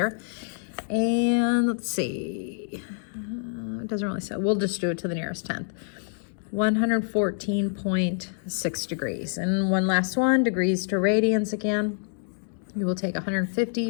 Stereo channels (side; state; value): right; silent; digital silence